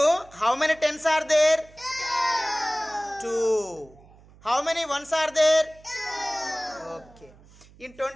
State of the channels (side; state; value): right; noise; hum, 25 dB below the sound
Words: how many tens are there? 2. How many ones are there? 2. Okay. In